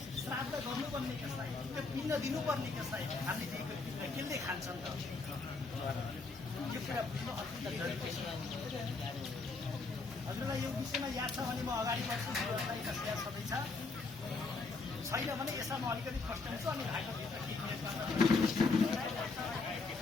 श्राद्ध गर्नुपर्ने कसलाई, त्यो पिण्ड दिनुपर्ने कसलाई, हामीले दिएको पिण्ड कसले खान्छन् त? यो कुरा बुझ्नु अत्यन्त जरुरी छ। हजुरलाई यो विषयमा याद छ भने म अगाडि बढ्छु। व्यवस्थायी कसैलाई सबै छ, छैन भने यसमा म अलिकति फस्टाउँछु अनि भाइको भित्र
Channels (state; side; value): quieter; right; 4.0 dB